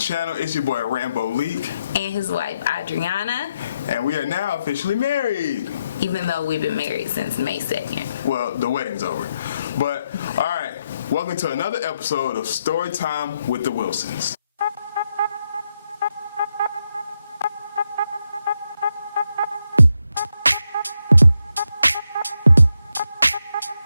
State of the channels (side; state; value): both; inverted; correlation -0.82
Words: It's your boy Rambo Leak and his wife Adriana, and we are now officially married, even though we've been married since May 2nd. Well, the wedding's over, but alright, welcome to another episode of Storytime with the Wilsons.